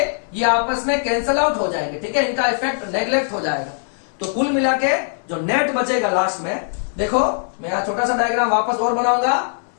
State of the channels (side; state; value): right; silent; digital silence